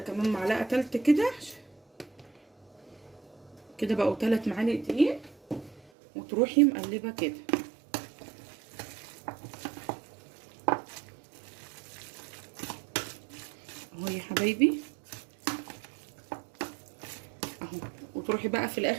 كمان معلقه تالته كده كده، بقوا 3 معالق دقيق، وتروحي مقلبه كده اهو يا حبايبي اهو. وتروحي بقى في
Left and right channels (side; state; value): left; drops out; at 5.8 s